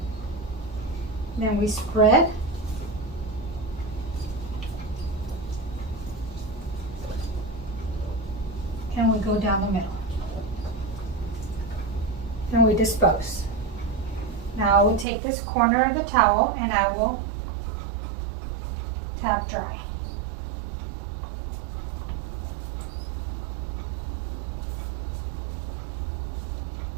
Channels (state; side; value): drops out; left; at 15.1 s